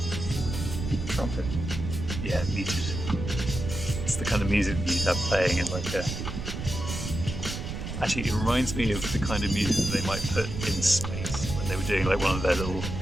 Trumpet. Yeah, muted. It's the kind of music that you'd have playing in like a... Actually, it reminds me of the kind of music that they might put in space when they were doing like one of their little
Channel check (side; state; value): right; noise; rumble, 5 dB below the sound